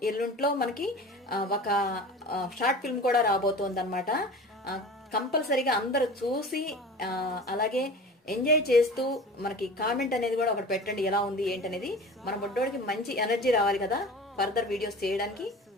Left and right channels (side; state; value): both; normal; correlation 0.37